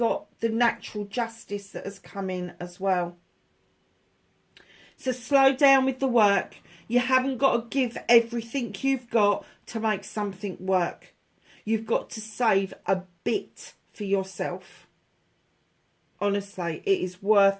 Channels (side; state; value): both; identical; correlation 1.00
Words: the natural justice that has come in as well. So slow down with the work. You haven't got to give everything you've got to make something work. You've got to save a bit for yourself. Honestly, it is worth